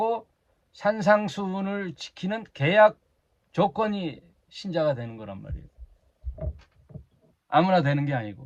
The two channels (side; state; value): both; identical; correlation 1.00